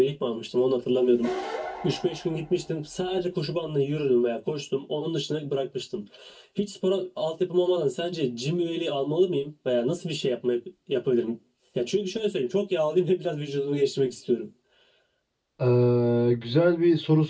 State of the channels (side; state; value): both; identical; correlation 1.00